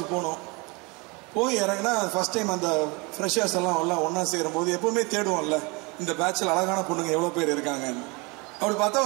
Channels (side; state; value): left; quieter; 28.3 dB